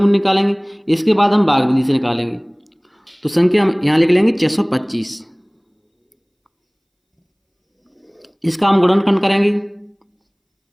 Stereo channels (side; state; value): both; identical; correlation 1.00